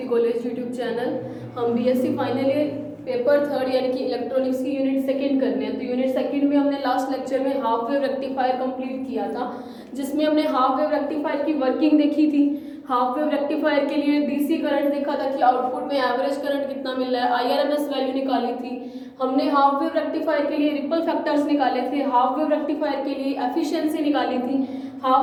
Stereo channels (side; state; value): both; identical; correlation 1.00